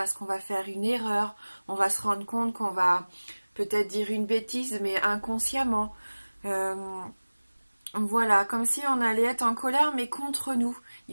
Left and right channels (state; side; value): inverted; both; correlation -1.00